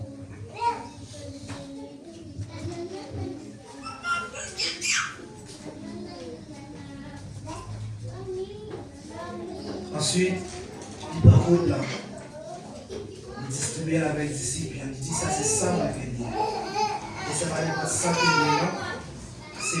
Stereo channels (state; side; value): identical; both; correlation 1.00